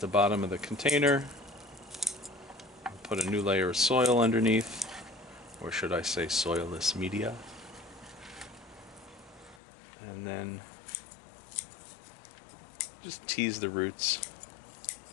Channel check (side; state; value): right; drops out; at 9.6 s